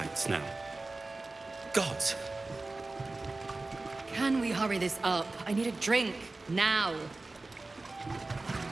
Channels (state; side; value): quieter; left; 3.2 dB